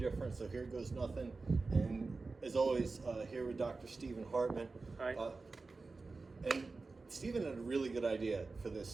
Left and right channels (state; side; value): quieter; left; 3.9 dB